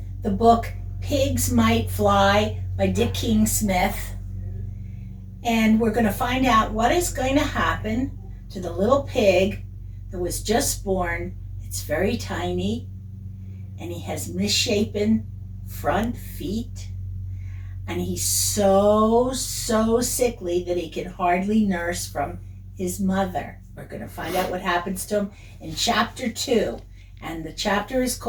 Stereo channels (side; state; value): both; identical; correlation 1.00